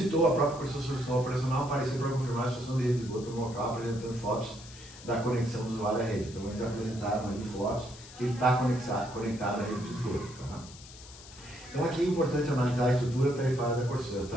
a própria Corsa Solução Operacional aparecer para confirmar a situação de rede de esgoto no local, apresentando fotos da conexão do usuário à rede. Então eles apresentaram ali fotos que ele está conectado à rede de esgoto. Tá? Então aqui é importante analisar a estrutura tarifária da Corsa. As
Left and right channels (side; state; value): left; noise; hiss, 18 dB below the sound